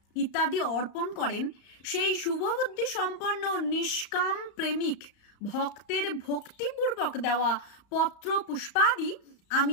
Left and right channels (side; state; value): right; late; 35 ms